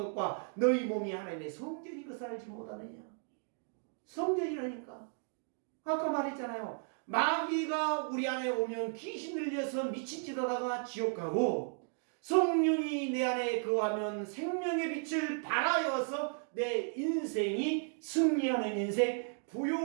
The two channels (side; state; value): left; silent; 55 dB below the other